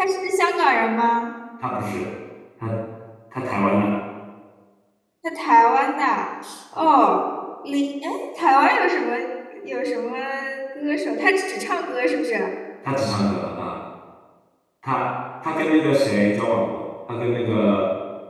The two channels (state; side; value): identical; both; correlation 1.00